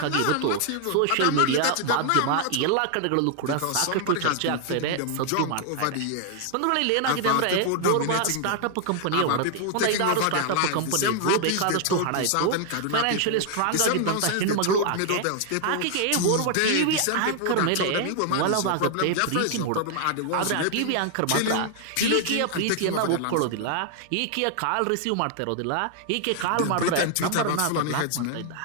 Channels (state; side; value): different; both; correlation 0.00